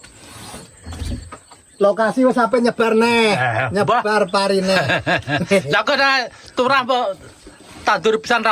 Lokasi wis sampe nyebar neh. Nyebar parine. Lah kok turah mbok tandur pisan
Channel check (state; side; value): identical; both; correlation 1.00